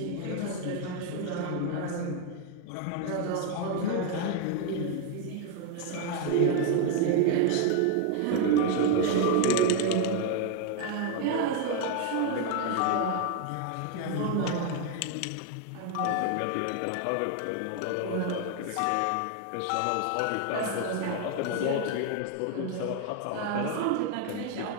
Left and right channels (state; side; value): different; both; correlation 0.01